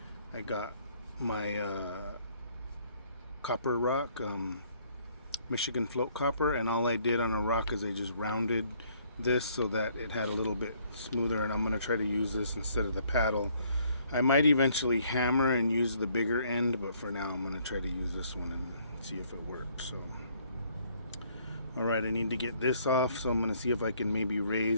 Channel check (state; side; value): inverted; both; correlation -0.64